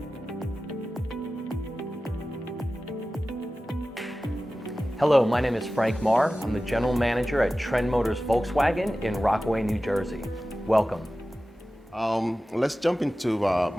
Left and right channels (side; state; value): both; normal; correlation 0.95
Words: Hello, my name is Frank Marr. I'm the General Manager at Trend Motors Volkswagen in Rockaway, New Jersey. Welcome. Let's jump into